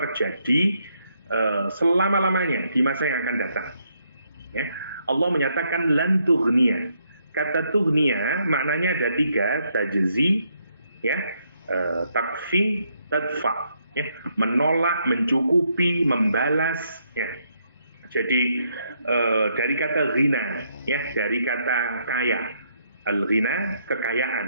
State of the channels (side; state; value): both; inverted; correlation -0.74